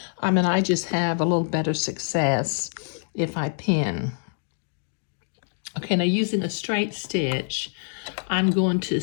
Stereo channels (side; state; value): right; silent; digital silence